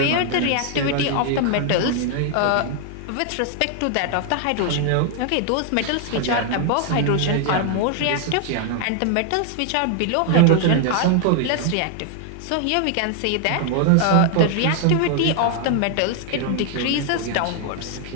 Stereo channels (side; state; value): both; different; correlation 0.00